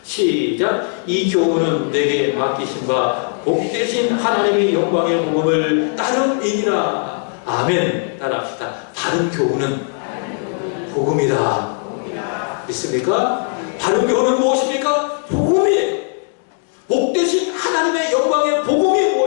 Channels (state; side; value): silent; right; 56 dB below the other